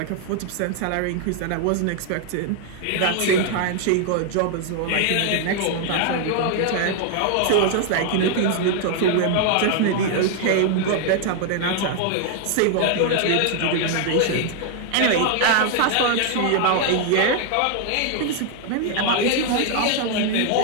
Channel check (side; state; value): both; different; correlation 0.00